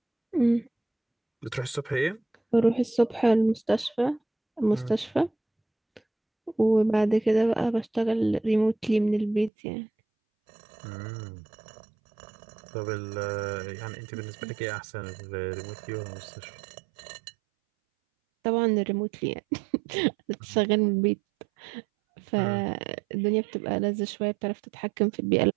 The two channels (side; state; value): left; drops out; at 9.5 s